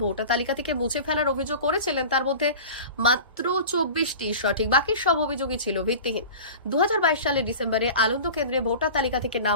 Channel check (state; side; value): inverted; both; correlation -0.36